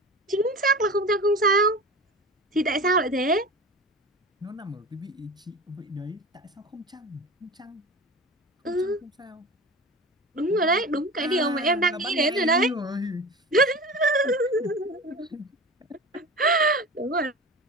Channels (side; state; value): both; normal; correlation 0.33